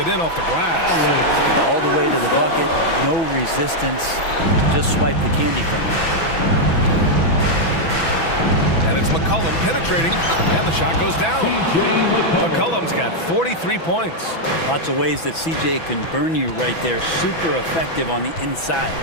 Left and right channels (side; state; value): right; late; 6.0 ms